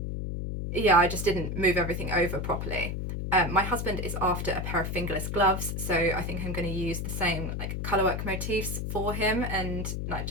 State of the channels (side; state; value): left; noise; hum, 3 dB below the sound